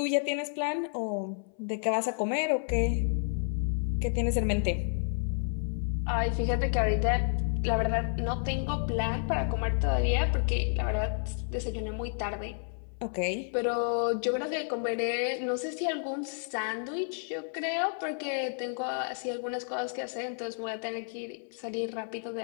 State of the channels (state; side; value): silent; right; 57 dB below the other